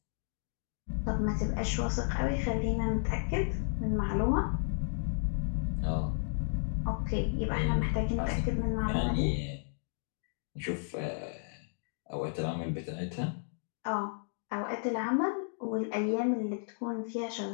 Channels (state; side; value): silent; right; digital silence